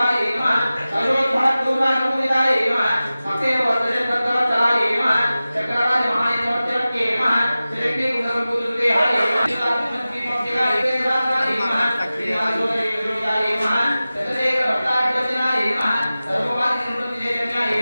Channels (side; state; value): both; inverted; correlation -0.96